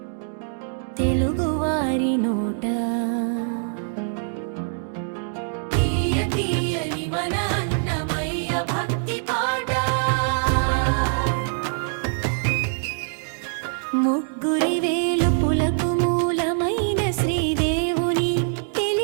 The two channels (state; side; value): silent; left; digital silence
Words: తెలుగువారి నోట తీయ తీయని మన అన్నమయ్య భక్తి పాట ముగ్గురి వేలుపులకు మూలమైన శ్రీదేవుని